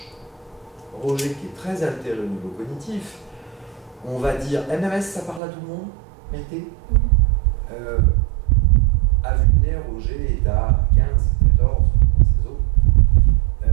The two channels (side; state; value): left; drops out; at 5.4 s